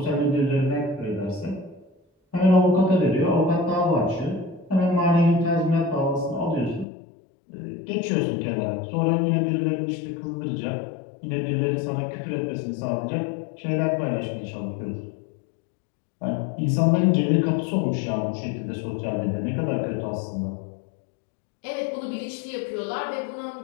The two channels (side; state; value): right; drops out; at 6.9 s